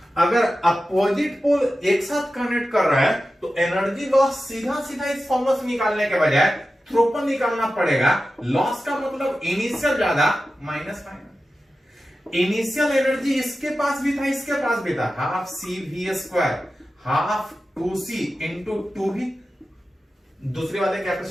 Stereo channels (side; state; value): both; normal; correlation 0.93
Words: अगर अपोजिट पोल एक साथ कनेक्ट कर रहा है तो एनर्जी लॉस सीधा सीधा इस फॉर्मूला से निकालने के बजाय थ्रू पर निकालना पड़ेगा। लॉस का मतलब इनिशियल ज्यादा माइनस माइनस। इनिशियल एनर्जी इसके पास भी था, इसके पास भी था, half CV square, half 2C into 2V। दूसरे वाले